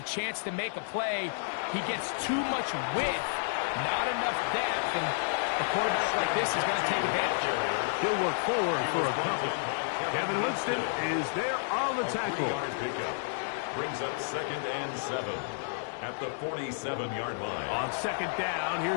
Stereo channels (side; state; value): right; silent; digital silence